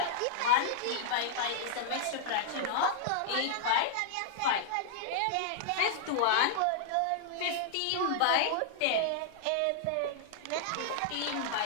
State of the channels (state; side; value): different; both; correlation -0.01